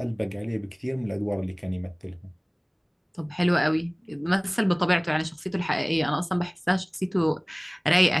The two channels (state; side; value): identical; both; correlation 1.00